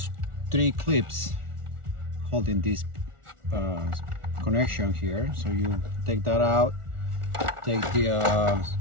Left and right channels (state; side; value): late; left; 1.4 ms